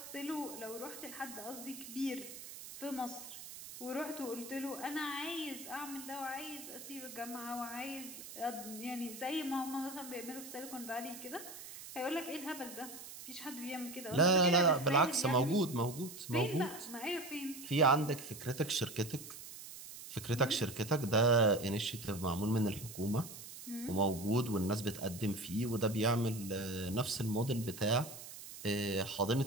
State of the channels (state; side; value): noise; right; hiss, 13 dB below the sound